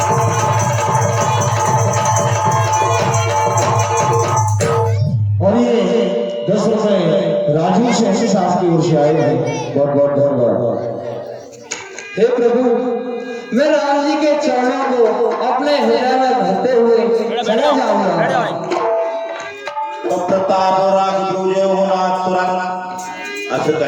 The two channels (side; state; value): both; identical; correlation 1.00